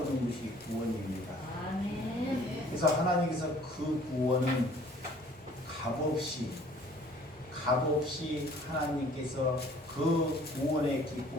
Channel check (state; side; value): normal; both; correlation 0.55